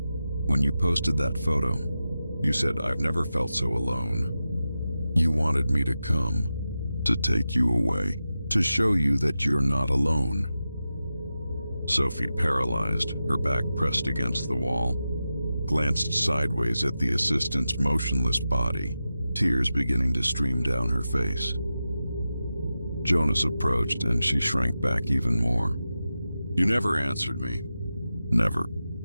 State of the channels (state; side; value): inverted; both; correlation -0.92